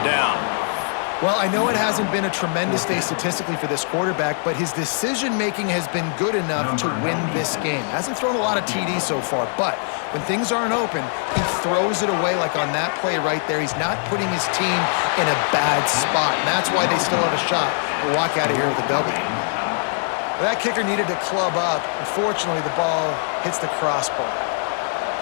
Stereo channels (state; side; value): silent; right; 59 dB below the other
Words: down. Well, I know it hasn't been a tremendous day statistically for this quarterback, but his decision-making has been good enough to win this game. Hasn't thrown a lot of TDs so far, but when things aren't open, he throws it away like on that play right there. He's not putting his team in a bad spot, and that's why they still have a shot to walk out of here with a W. Well, that kicker needed to club up. Unfortunately, the ball hits the crossbar.